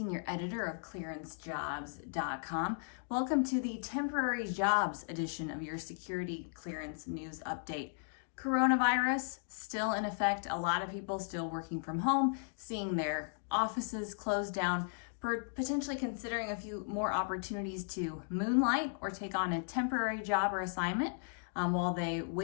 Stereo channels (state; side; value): silent; right; digital silence